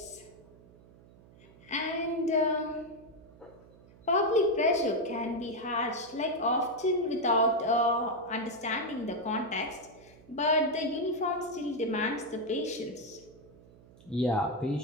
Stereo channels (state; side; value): noise; right; hum, 24 dB below the sound